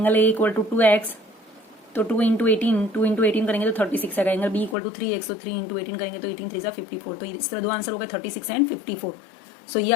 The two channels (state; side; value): drops out; right; at 4.8 s